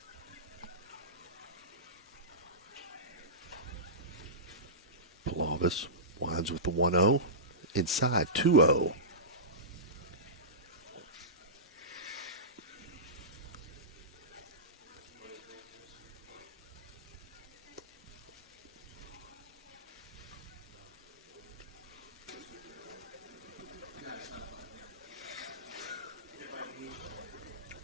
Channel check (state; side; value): normal; both; correlation -0.20